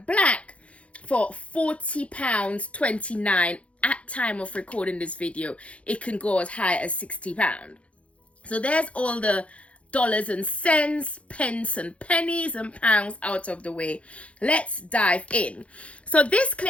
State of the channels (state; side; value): late; right; 0.063 ms